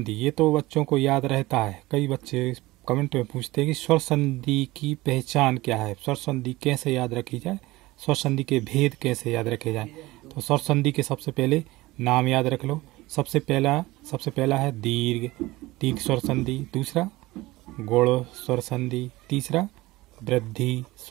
ये तो बच्चों को याद रहता है। कई बच्चे कमेंट में पूछते हैं कि स्वर संधि की पहचान क्या है, स्वर संधि कैसे याद रखी जाए, स्वर संधि के भेद कैसे याद रखे जाए। तो स्वर संधि के सबसे पहले नाम याद रख लो। सबसे पहला है दीर्घ स्वर संधि, दूसरा गुण स्वर संधि, तीसरा वृद्धि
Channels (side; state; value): left; quieter; 19.5 dB